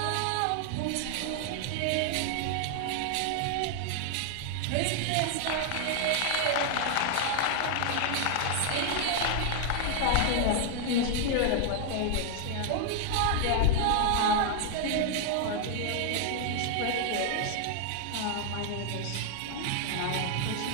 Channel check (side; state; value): both; different; correlation 0.00